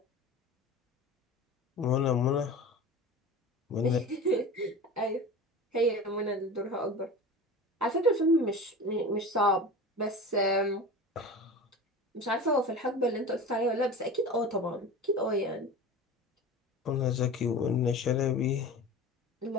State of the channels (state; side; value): normal; both; correlation 0.33